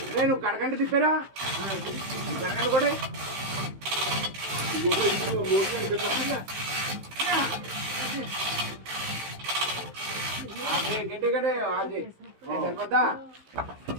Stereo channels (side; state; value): left; late; 15 ms